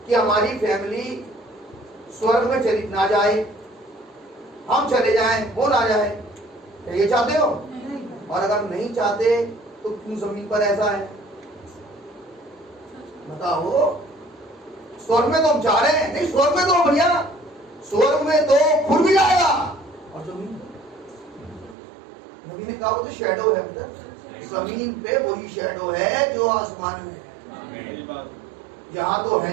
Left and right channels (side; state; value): left; drops out; at 21.8 s